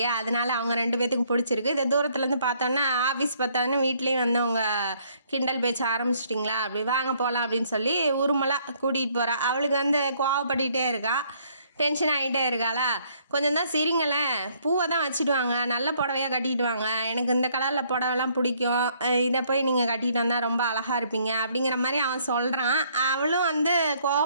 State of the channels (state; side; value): inverted; both; correlation -0.65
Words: அதனால அவங்க 2 பேர்த்துக்கும் பிடிச்சிருக்கு. இதை தூரத்துலேருந்து பார்த்தோன்னா ஆஃபீஸ் பார்த்தாங்கன்னா வீட்லேயும் வந்து அவங்க கிண்டல் பேச்ச ஆரம்பிச்சிட்டிங்களா, அப்படி வாங்க போகலாம் அப்படின்னு சொல்லி உருமலாக கூட்டிகிட்டு போகிறா. அவளுக்கு வந்து கோவப்பட்டுக்கிட்டே இருக்கா, டென்ஷன் ஆகிட்டே இருக்காளா? கொஞ்சம் தான் சிரிங்களேன், பூவை தான் வச்சுட்டு வாங்க, நல்ல புடவையாக கட்டிட்டு வாங்க, எனக்கு இந்த கலரில் புடவைலாம் பிடிக்கும், இதை போய் நீங்கள் கட்டிட்டு வந்தால் ரொம்ப அழகாக இருப்பீங்க அப்படிங்கிற மாதிரி அவன் சொல்கிறான். அவளும் வந்து